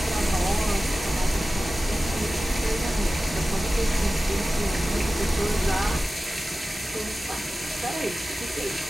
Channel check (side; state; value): both; normal; correlation 0.96